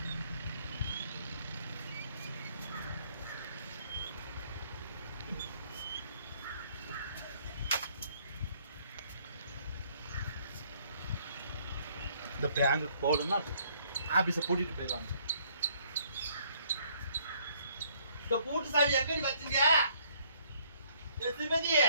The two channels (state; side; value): inverted; both; correlation -0.65